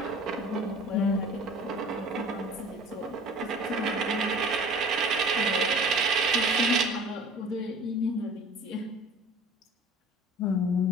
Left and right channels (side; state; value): both; normal; correlation 0.45